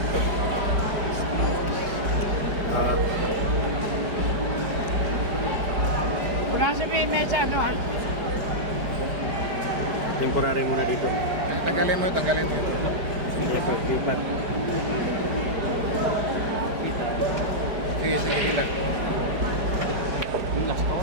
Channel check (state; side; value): late; left; 4.9 ms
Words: Ah, Pulasan mo yung medya ano ha? temporary muna dito. Tanggalin mo yun, tanggalin mo yun. Lipat. Sige, sige, ilan.